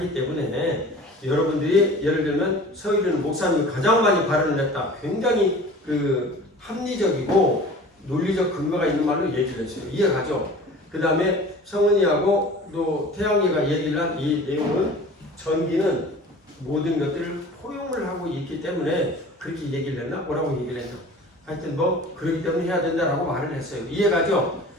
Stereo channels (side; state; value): both; normal; correlation 0.42